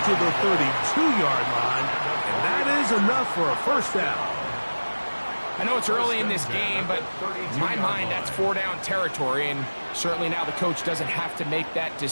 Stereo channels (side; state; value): both; inverted; correlation -1.00